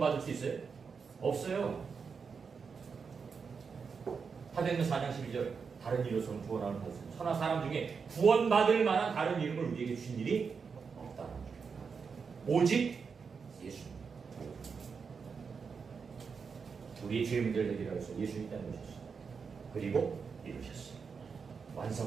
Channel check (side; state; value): left; quieter; 5.7 dB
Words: 수 있어요? 없어요. 사도행전 4장 12절 다른 이로서는 구원을 받을 수 있어요. 천하 사람 중에 구원받을 만한 다른 이름을 우리에게 주신 일이 없다. 오직 예수님. 우리의 죄 문제를 해결하기 위해서 예수님이 이 땅에 오셨어요. 그리고 이루셨어요.